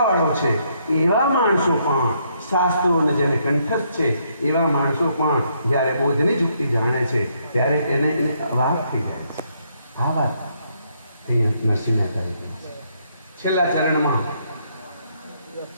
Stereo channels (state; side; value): inverted; both; correlation -0.73